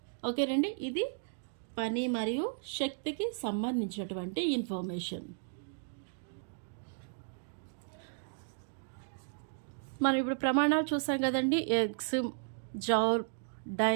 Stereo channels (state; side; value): silent; left; digital silence